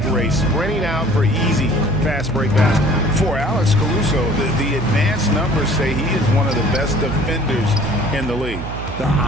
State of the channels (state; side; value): noise; right; hum, 8 dB below the sound